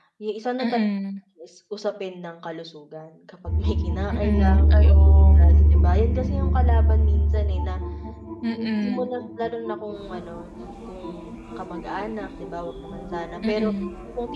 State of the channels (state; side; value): identical; both; correlation 1.00